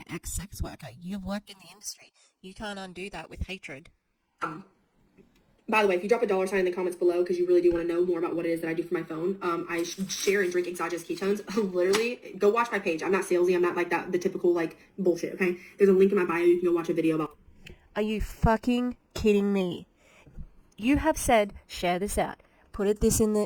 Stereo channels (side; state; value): both; identical; correlation 1.00